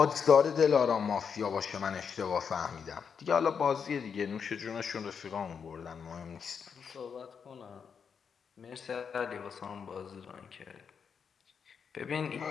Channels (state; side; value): quieter; right; 6.6 dB